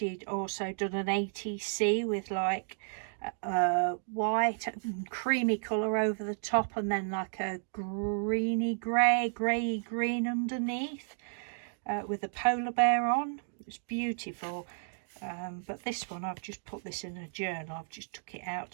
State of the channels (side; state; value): left; silent; digital silence